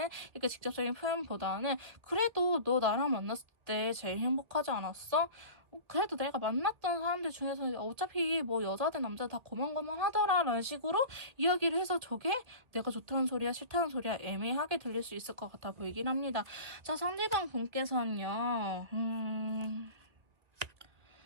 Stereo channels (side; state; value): left; late; 2.0 ms